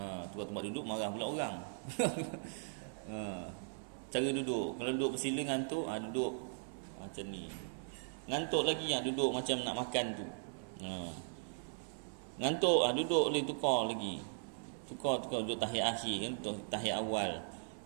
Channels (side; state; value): left; silent; 52 dB below the other